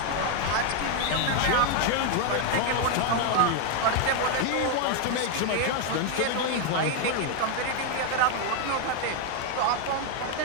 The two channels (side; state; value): both; different; correlation 0.01